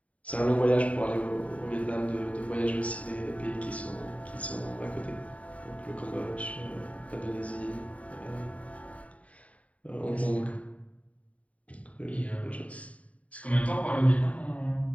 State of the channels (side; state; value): right; late; 0.067 ms